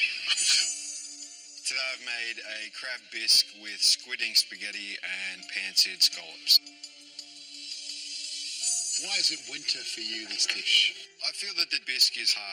Today I've made a crab bisque with squid ink spaghetti and pan-seared scallops. Why is it winter for you, this dish? I feel that the bisque is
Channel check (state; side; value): identical; both; correlation 1.00